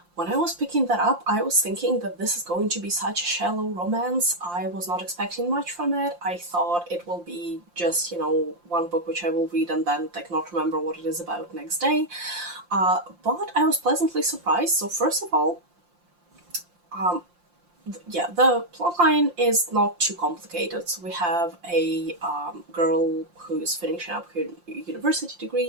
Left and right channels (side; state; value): left; late; 5.7 ms